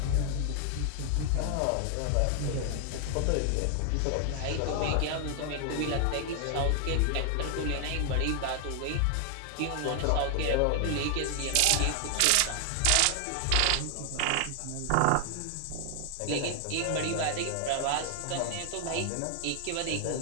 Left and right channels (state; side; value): different; both; correlation 0.00